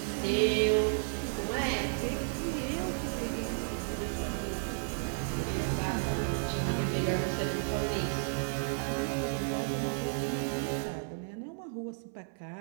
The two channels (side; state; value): left; silent; 56 dB below the other